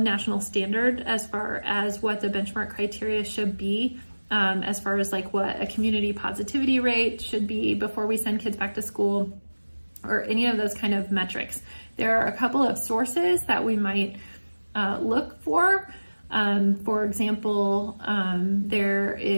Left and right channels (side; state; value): both; inverted; correlation -1.00